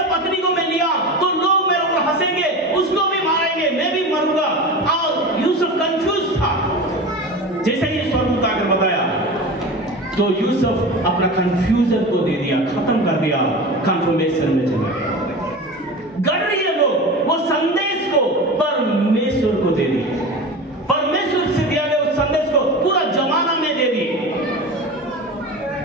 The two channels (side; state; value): both; normal; correlation 0.30